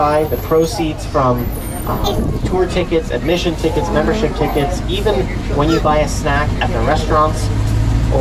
the proceeds from tour tickets, admission tickets, membership tickets, even when you buy a snack at the restaurants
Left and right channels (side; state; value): both; identical; correlation 1.00